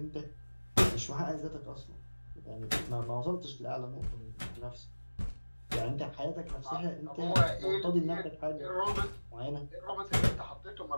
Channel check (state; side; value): inverted; both; correlation -1.00